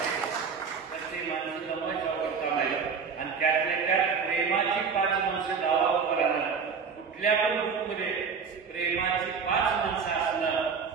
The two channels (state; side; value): quieter; left; 5.8 dB